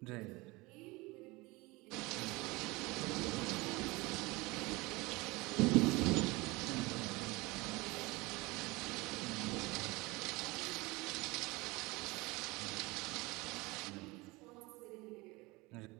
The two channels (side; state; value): left; quieter; 23.3 dB